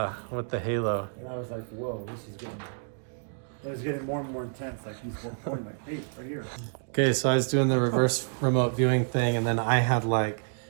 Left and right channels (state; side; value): silent; left; digital silence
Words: with the halo. And I was like, whoa, it was getting more and more intense. Like he's pointing like, hey, right here. Okay, so I was doing the reverse remote viewing thing, and then I had like